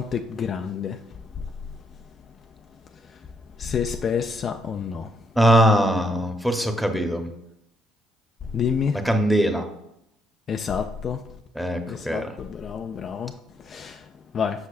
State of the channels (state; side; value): normal; both; correlation 0.75